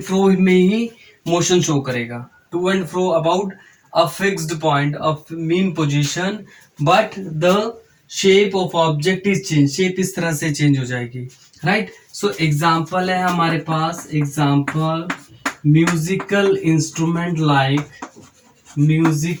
फ्रो में ही मोशन शो करेगा. To and fro about a fixed point of mean position, but the shape of object is change. Shape इस तरह से चेंज हो जाएगी, राइट. सो एग्जाम्पल है हमारे पास. Example, musical instrument like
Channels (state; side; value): identical; both; correlation 1.00